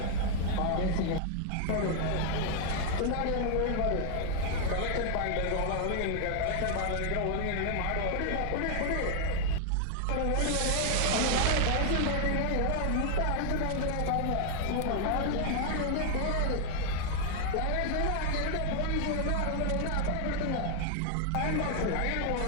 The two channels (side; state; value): both; different; correlation 0.00